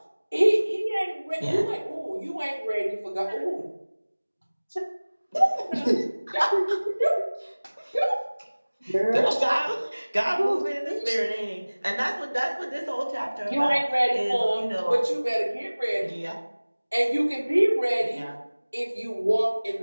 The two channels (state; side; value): inverted; both; correlation -1.00